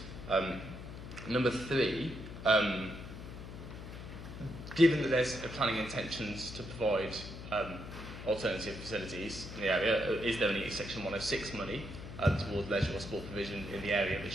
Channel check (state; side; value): noise; left; hum, 11 dB below the sound